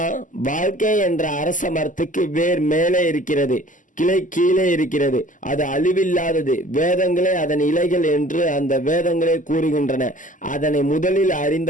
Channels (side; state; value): right; late; 0.37 ms